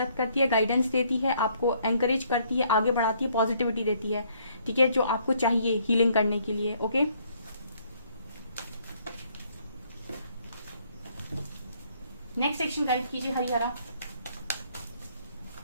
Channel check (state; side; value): inverted; both; correlation -0.66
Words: करती है, गाइडेंस देती है, आपको एनकरेज करती है, आगे बढ़ाती है, पॉजिटिविटी देती है, ठीक है, जो आपको चाहिए हीलिंग करने के लिए। ओके, नेक्स्ट सेक्शन गाइड कीजिए हरिहरा।